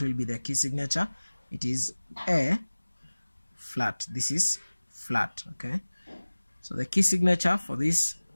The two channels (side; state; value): both; inverted; correlation -1.00